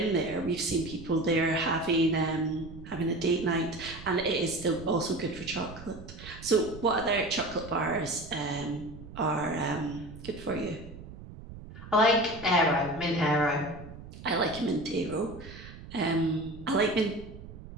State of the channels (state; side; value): noise; right; rumble, 14 dB below the sound